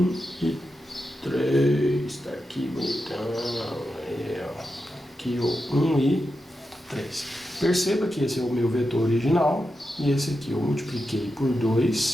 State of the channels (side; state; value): both; normal; correlation 0.89